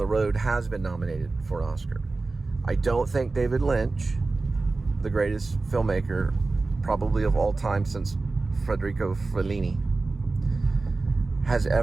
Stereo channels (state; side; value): quieter; left; 3.6 dB